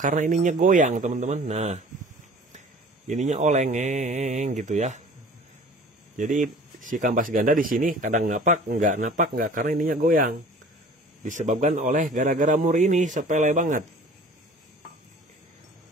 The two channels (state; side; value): normal; both; correlation 0.46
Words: ininya goyang teman-teman. Nah ininya oleng gitu ya. Jadi si kampas ganda di sini kadang napak enggak karena ininya goyang. Disebabkan oleh gara-gara mur ini, sepele banget.